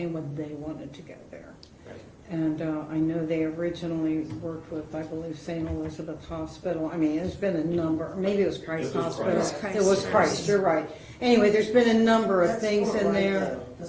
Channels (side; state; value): both; identical; correlation 1.00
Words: what they wanted to go there. Right. And I know they originally worked with, I believe, St. Elizabeth Hospital. I mean, there's been a number, maybe it was Christ It was Hospital. Christ. It was Christ, you're right. Anyway, there's been a number of That's things Fort in Wright, there. though.